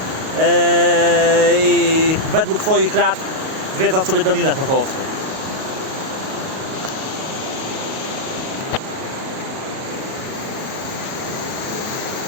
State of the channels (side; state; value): left; late; 38 ms